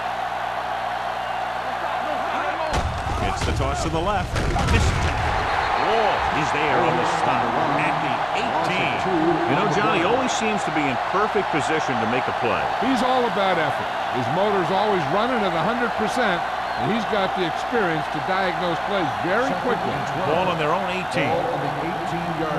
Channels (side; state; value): both; identical; correlation 1.00